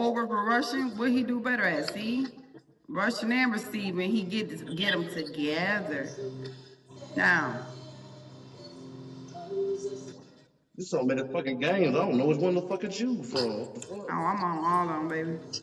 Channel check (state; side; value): identical; both; correlation 1.00